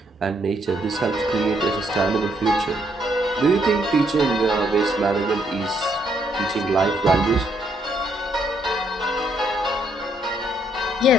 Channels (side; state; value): both; normal; correlation 0.72